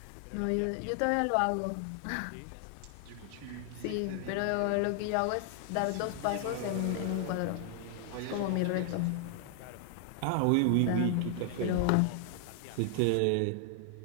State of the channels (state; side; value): different; both; correlation 0.00